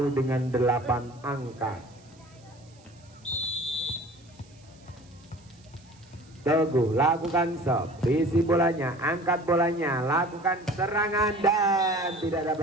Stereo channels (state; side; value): noise; right; hiss, 29 dB below the sound